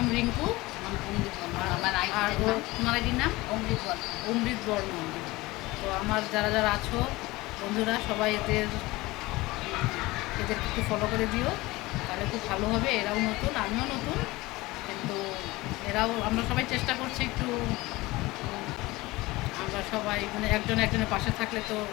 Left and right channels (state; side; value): quieter; right; 20.6 dB